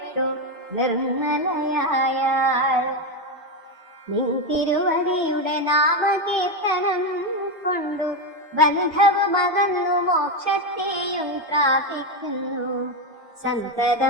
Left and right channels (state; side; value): normal; both; correlation 0.10